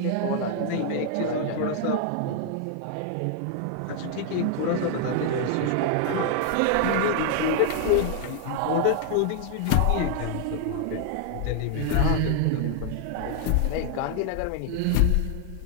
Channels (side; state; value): both; different; correlation 0.00